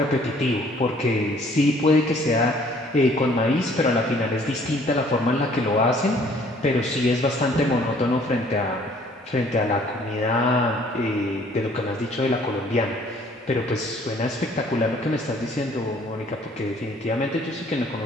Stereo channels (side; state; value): both; normal; correlation 0.58